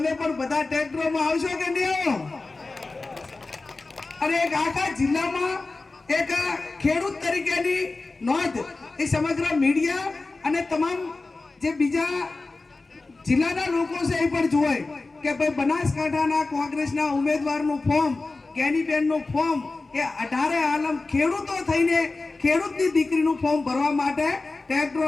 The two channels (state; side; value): quieter; right; 3.5 dB